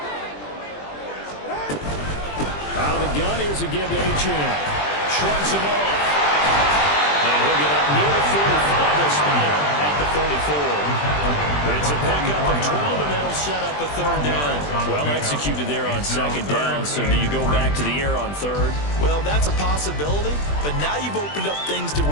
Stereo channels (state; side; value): late; right; 20 ms